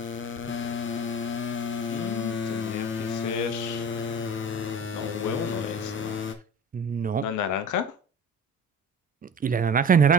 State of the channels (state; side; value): normal; both; correlation 0.38